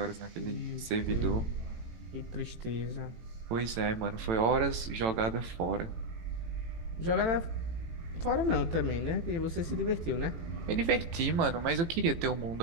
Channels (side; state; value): left; late; 18 ms